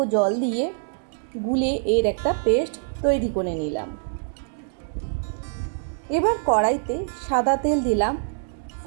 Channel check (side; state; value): left; silent; digital silence